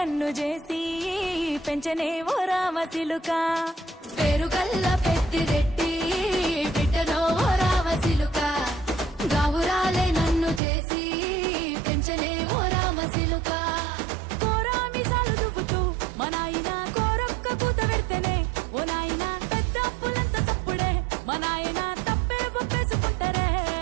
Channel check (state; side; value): drops out; left; at 10.6 s